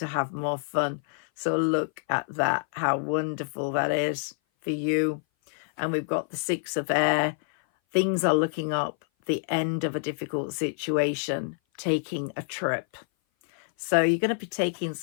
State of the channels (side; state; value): right; silent; 57 dB below the other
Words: have more fun. So look at that, how wonderful that is for you. And we've got the Six of Air. Things are looking up, the end of a difficult situation, taking a trip. So you're going to be taking